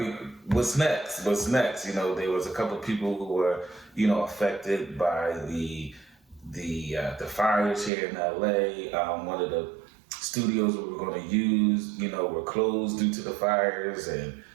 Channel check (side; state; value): left; drops out; at 7.9 s